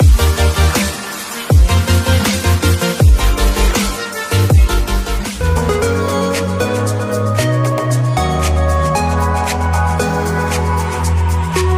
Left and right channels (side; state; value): both; identical; correlation 1.00